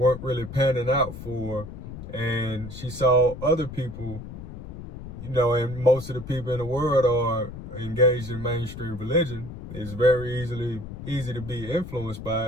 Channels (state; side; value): noise; left; rumble, 11 dB below the sound